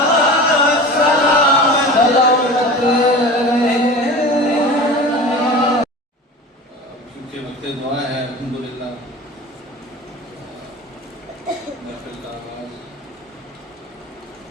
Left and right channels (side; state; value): both; normal; correlation 0.35